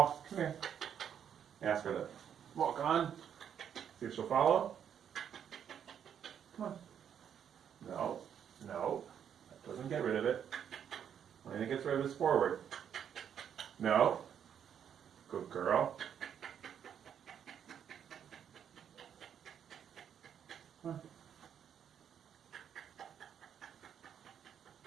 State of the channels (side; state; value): left; quieter; 8.6 dB